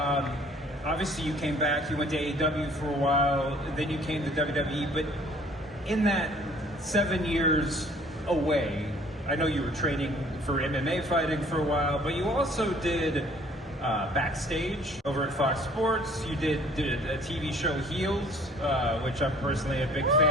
obviously you came back, you went to AEW for a while, then you came to WWE, but in that 7 years away, I know you were training for MMA fighting for a while, but you also did backstage over at Fox Sports. You did a TV show, Heels, which I'm personally a big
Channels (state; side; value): normal; both; correlation 0.56